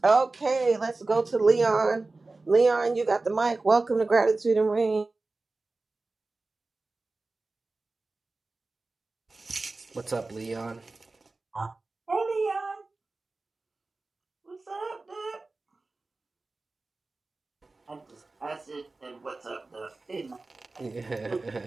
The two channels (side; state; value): left; quieter; 3.4 dB